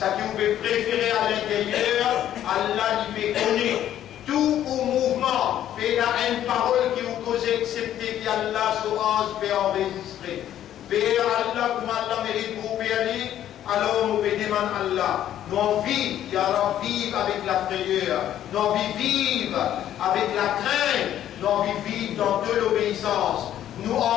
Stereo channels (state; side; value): quieter; right; 11.5 dB